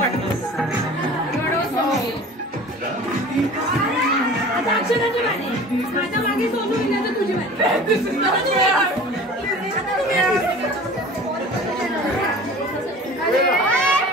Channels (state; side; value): normal; both; correlation 0.41